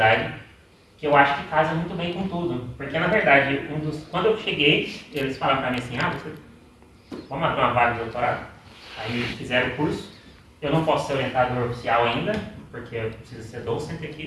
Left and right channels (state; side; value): identical; both; correlation 1.00